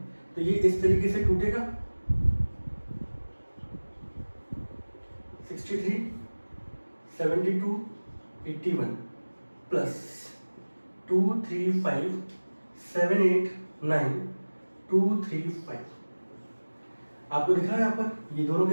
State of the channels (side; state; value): both; inverted; correlation -1.00